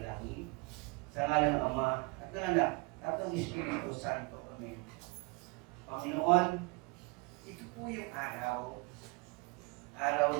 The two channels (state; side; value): quieter; left; 28.3 dB